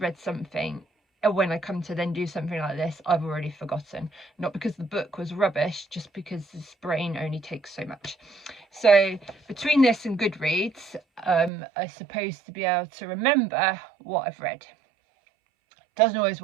something, when I come to then do something like this, I've already forgotten. Not because the book was rubbish, just because this brain only takes so much. So between this and Goodreads, I'm supposed to be able to remember what I've read. Doesn't always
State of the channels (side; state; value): left; drops out; at 11.5 s